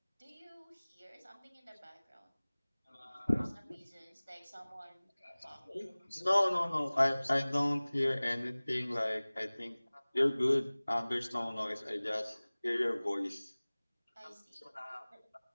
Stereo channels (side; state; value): both; inverted; correlation -1.00